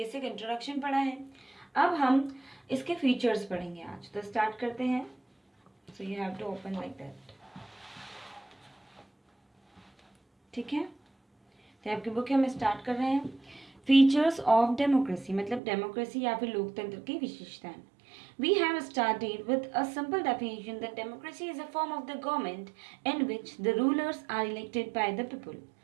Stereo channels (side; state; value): left; drops out; at 15.6 s